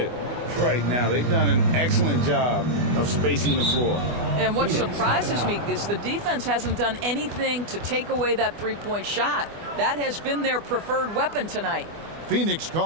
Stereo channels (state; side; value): late; left; 24 ms